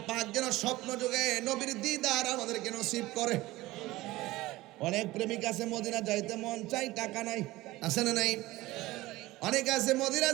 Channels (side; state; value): left; quieter; 18.6 dB